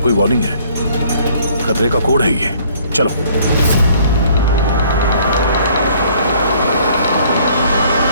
कोई वार्निंग है, खतरे का कोड है ये। चलो।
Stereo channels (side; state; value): both; inverted; correlation -0.59